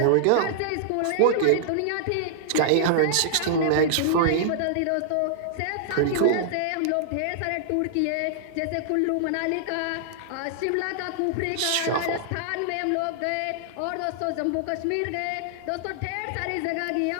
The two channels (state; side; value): different; both; correlation -0.01